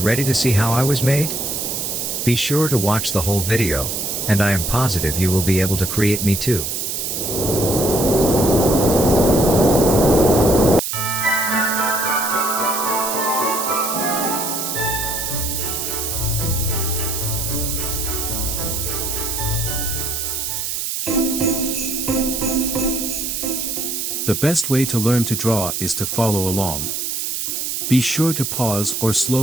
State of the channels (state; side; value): noise; right; hiss, 2 dB below the sound